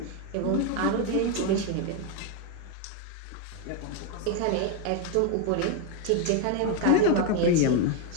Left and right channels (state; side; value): different; both; correlation 0.01